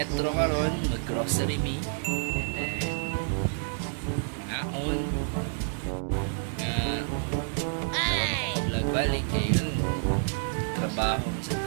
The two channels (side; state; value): left; silent; digital silence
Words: karon mag-grocery me. Ngaon. Vlog balik yun. Trabaho.